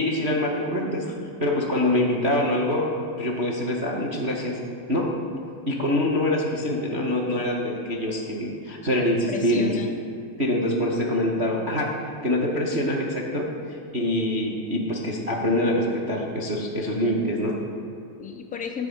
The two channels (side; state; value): left; late; 3.1 ms